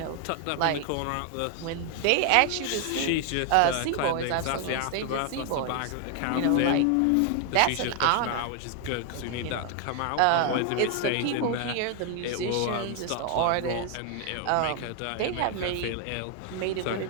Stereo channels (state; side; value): different; both; correlation 0.00